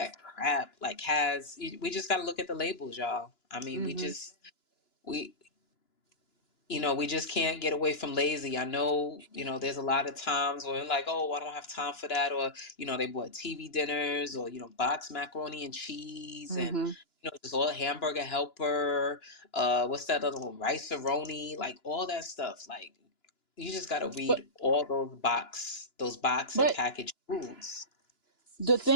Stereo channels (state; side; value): late; right; 2.9 ms